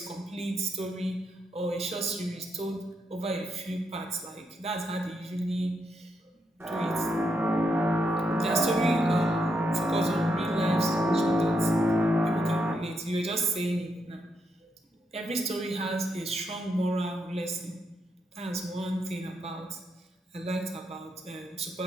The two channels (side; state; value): both; normal; correlation 0.80